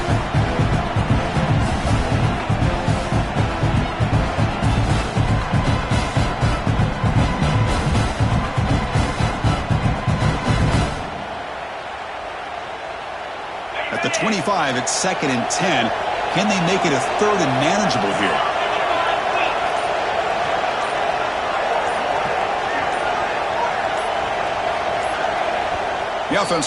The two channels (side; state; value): both; identical; correlation 1.00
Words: At the 25, it's 2nd and 10. Can they make it a 3rd and manageable here? The